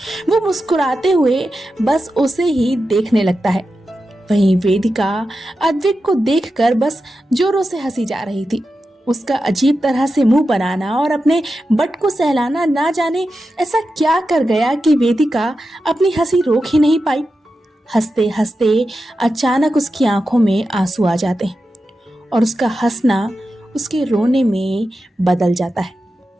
वो मुस्कुराते हुए बस उसे ही देखने लगता है। वहीं वेदिका अद्विक को देखकर बस जोरों से हंसी जा रही थी। उसका अजीब तरह से मुंह बनाना और अपने बट को सहलाना ना जाने ऐसा क्या कर गया कि वेदिका अपनी हंसी रोक ही नहीं पाई। हंसते हंसते अचानक उसकी आंखों में आंसू आ जाते हैं और उसका हंसना उसके रोने में बदल जाता है।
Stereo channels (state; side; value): normal; both; correlation 0.91